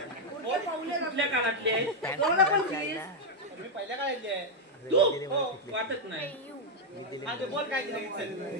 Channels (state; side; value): normal; both; correlation 0.00